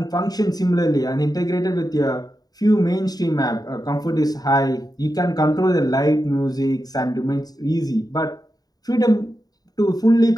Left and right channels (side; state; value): right; late; 0.18 ms